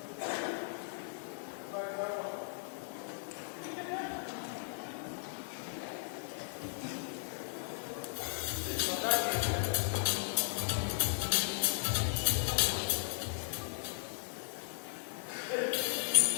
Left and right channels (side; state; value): right; silent; digital silence